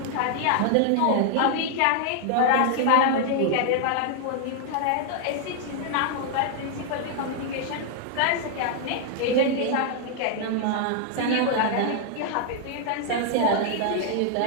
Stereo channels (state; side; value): different; both; correlation 0.00